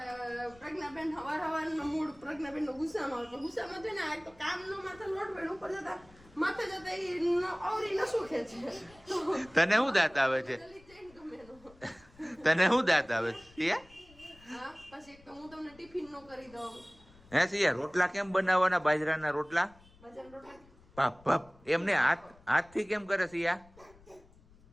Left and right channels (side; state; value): left; noise; rumble, 26 dB below the sound